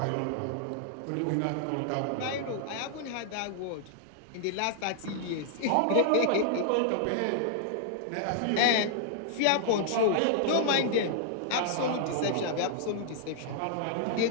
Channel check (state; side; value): different; both; correlation -0.01